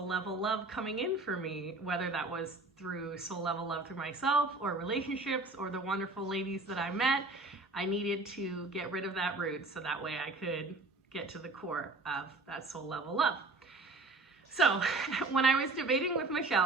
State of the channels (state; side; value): quieter; left; 3.3 dB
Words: level love coming in for me, whether that was through soul level love through myself or relationships or the wonderful ladies that I met. I needed to get rid of that root so that way I could get to the core of that soul level love. So when I was debating with